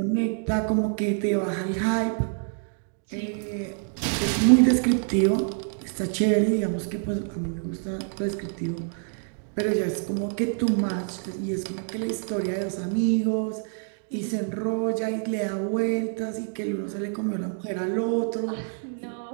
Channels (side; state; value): left; silent; 60 dB below the other